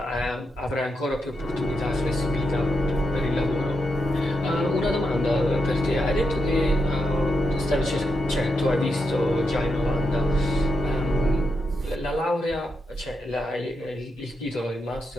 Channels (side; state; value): both; normal; correlation 0.84